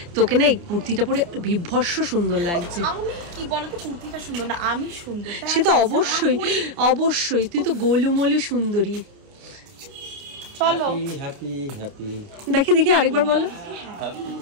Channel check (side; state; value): left; late; 29 ms